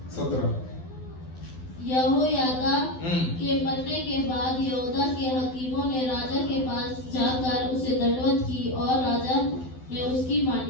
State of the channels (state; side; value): late; right; 12 ms